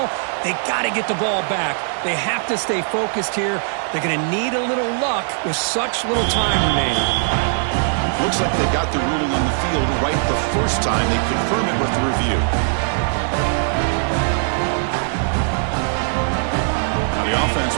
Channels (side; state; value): left; silent; digital silence